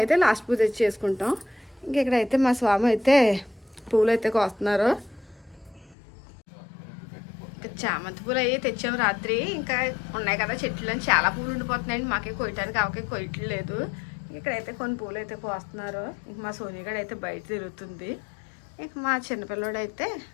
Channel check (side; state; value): right; drops out; at 6.0 s